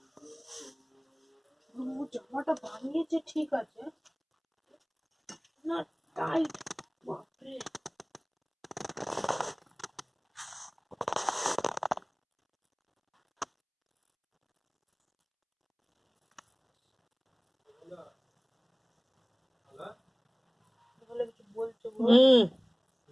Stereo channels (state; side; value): identical; both; correlation 1.00